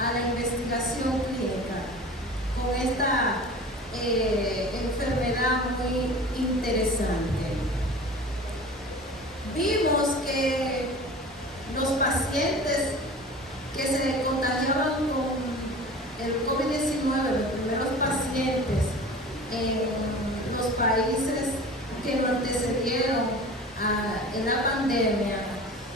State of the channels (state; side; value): normal; both; correlation 0.38